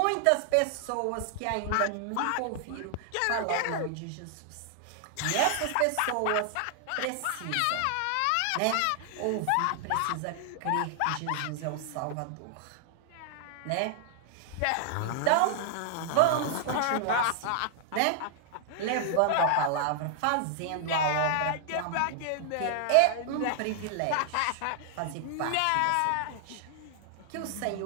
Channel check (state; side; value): different; both; correlation 0.00